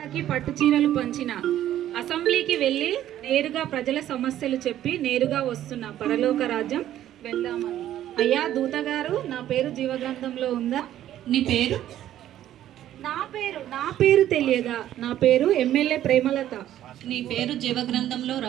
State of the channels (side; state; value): left; quieter; 12.2 dB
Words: చీరలు పంచిన అసెంబ్లీకి వెళ్ళి నేరుగా ప్రజల సమస్యలు చెప్పి నేరుగా వస్తున్న పరలోక రాజ్యం వెళ్దామని. అయ్యా దూత గారు, నా పేరు జీవగ్రంథంలో ఉందా? నీ పేరు? నా పేరు తెలియదా? నా పేరు ఎమ్మెల్యే ప్రేమలత. నీ పేరు జీవగ్రంథంలో